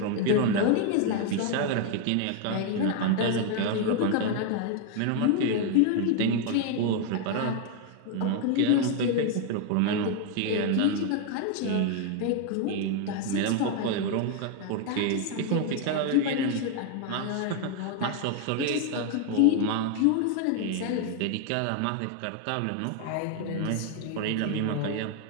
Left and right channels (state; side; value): different; both; correlation 0.01